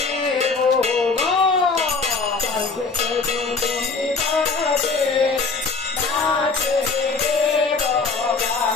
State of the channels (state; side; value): quieter; right; 4.3 dB